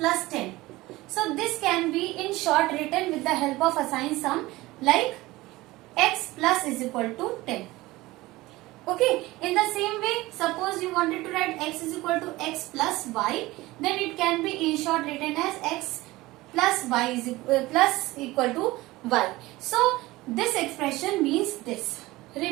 10. So this can be in short written with the help of assign sum, like x plus is equal to 10. Okay, in the same way, suppose you wanted to write x is equal to x plus y, then it can be in short written as x plus y is plus equal to y. So this expression means this.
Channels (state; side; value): quieter; left; 19.3 dB